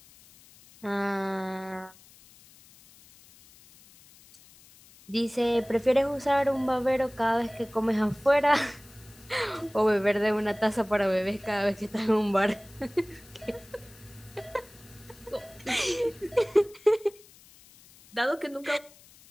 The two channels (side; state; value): left; noise; hiss, 25 dB below the sound